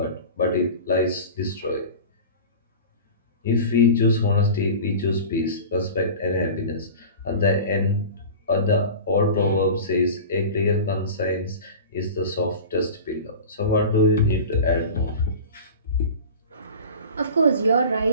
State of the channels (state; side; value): inverted; both; correlation -0.35